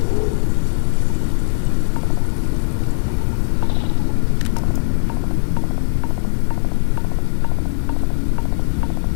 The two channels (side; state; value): right; silent; digital silence